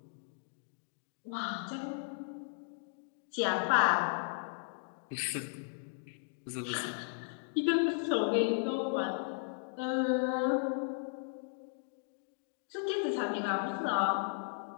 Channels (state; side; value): silent; right; digital silence